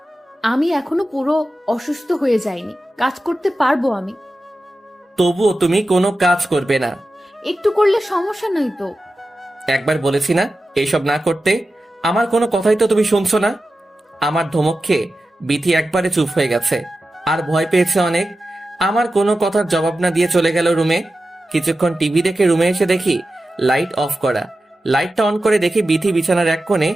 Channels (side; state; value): both; normal; correlation 0.93